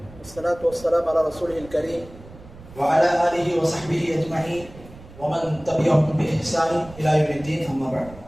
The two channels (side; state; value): right; noise; rumble, 19 dB below the sound